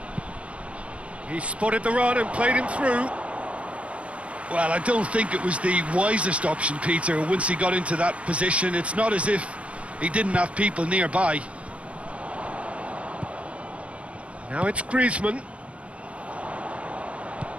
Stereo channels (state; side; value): late; left; 0.062 ms